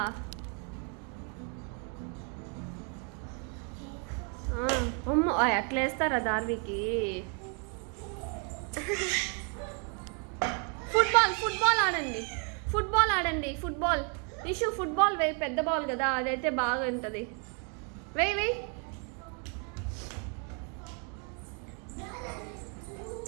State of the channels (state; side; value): quieter; left; 38.5 dB